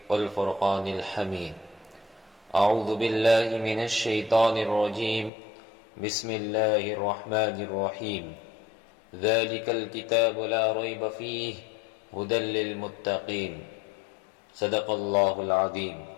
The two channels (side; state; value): right; drops out; at 5.3 s